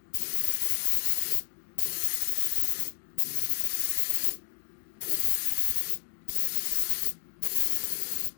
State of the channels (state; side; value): silent; right; 59 dB below the other